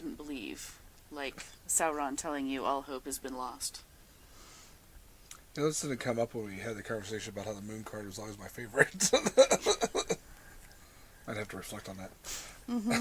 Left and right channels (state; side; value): identical; both; correlation 1.00